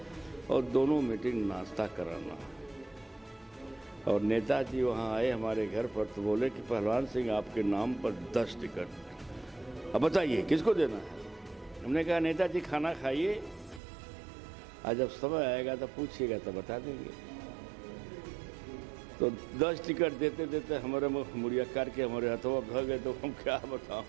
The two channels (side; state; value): left; drops out; at 13.8 s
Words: और दोनों मीटिंग नाश्ता कराना। और नेताजी वहाँ आए हमारे घर पर तो बोले कि पहलवान सिंह आपके नाम पर 10 टिकट, अब बताइए किसको देना है। हमने कहा नेताजी खाना खाइए, आज जब समय आएगा तो पूछिएगा तो बता देंगे। तो 10 टिकट देते देते हमारे मुड़िया काट के हमारे हथवा भ गए, तो हम क्या बताओ